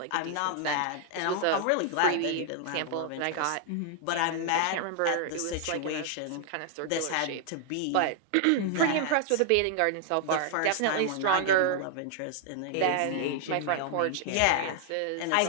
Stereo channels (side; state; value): both; different; correlation 0.00